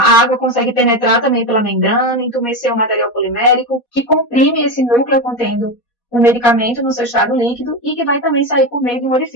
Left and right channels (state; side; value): late; right; 4.2 ms